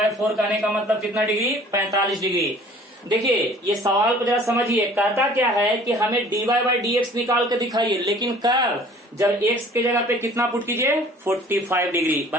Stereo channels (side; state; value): both; normal; correlation 0.51